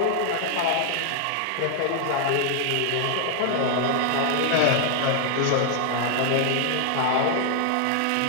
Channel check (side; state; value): both; different; correlation 0.00